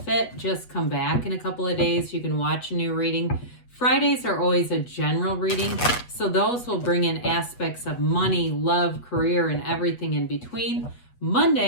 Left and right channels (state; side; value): late; right; 8.2 ms